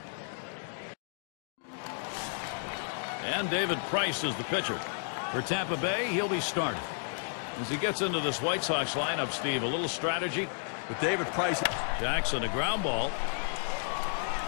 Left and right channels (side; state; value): right; silent; digital silence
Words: And David Price is the pitcher. For Tampa Bay, he'll be starting. As he gets into this White Sox lineup, Steve, a little strategy. With David Price. Jackson, a ground ball.